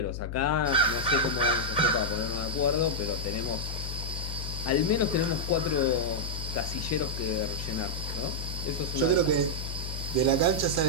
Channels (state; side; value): noise; left; hum, 6 dB below the sound